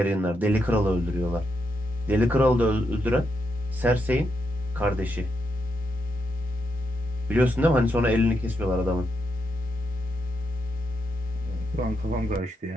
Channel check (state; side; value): normal; both; correlation 0.82